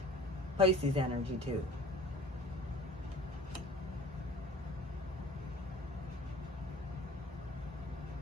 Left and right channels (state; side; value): normal; both; correlation 0.46